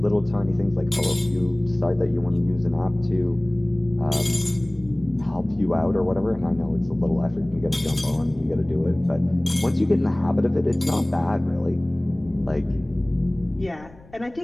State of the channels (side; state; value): left; noise; rumble, 23 dB below the sound